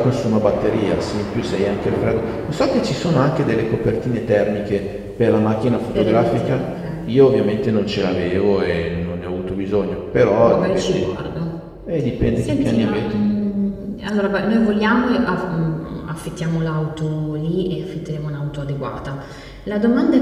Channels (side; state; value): both; identical; correlation 1.00